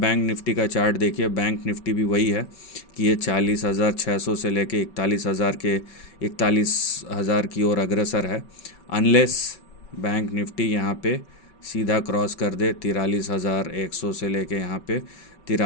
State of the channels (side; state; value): right; late; 5.4 ms